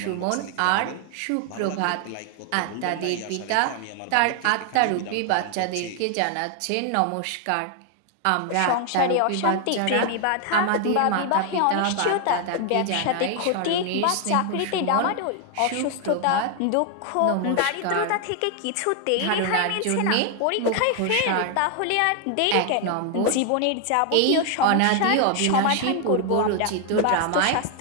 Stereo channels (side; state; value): both; different; correlation 0.00